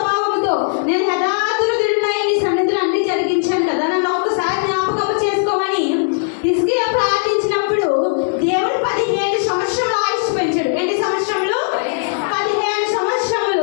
నేను యథార్థుడునై నీ సన్నిధిలో అన్ని జరిగించాను కదా, నన్ను ఒకసారి జ్ఞాపకం చేసుకోమని హిజ్కియా ప్రార్థించినప్పుడు దేవుడు 15 సంవత్సరాలు ఆయుష్ పెంచాడు. ఎన్ని సంవత్సరములు? 15 సంవత్సరములు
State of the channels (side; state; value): right; silent; digital silence